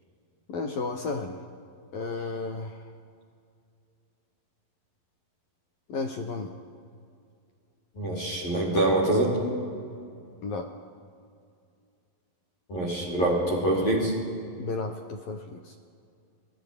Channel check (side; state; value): right; late; 11 ms